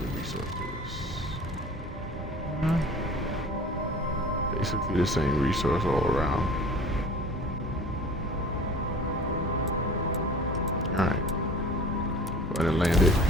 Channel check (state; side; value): normal; both; correlation 0.43